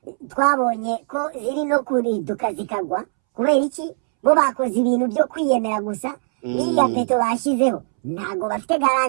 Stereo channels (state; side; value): silent; left; 65 dB below the other